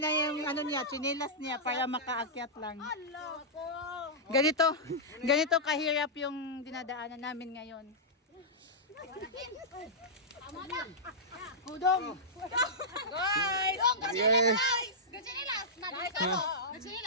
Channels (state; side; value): normal; both; correlation -0.13